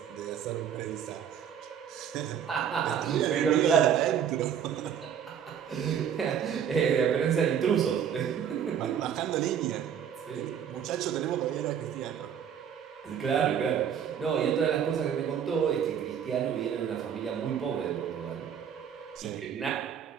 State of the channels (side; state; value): left; quieter; 8.5 dB